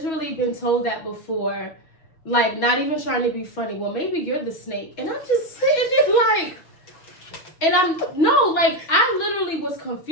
been told that before, like not even trying to be funny. Well, maybe you're the snake, and I'm just sitting there like, and I literally was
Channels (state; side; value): late; right; 6.3 ms